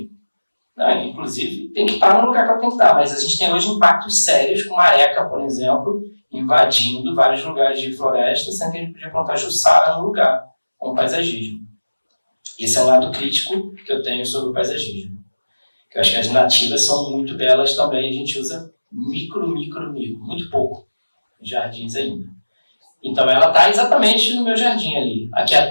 Não, inclusive, tem que estar no lugar que ela tem que estar. Mas a gente tem hoje impactos sérios com areca, por exemplo, invadindo vários lugares de floresta, sendo que a gente podia plantar Jussara no lugar, com paisagismo. Esse é um lado crítico que eu tenho sobre o paisagismo. Eu acho que as nativas são muito belas também, a gente usa micro, muito pouco em jardins ainda. Então ela está exatamente no meu jardim ali. Aqui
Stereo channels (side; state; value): both; inverted; correlation -1.00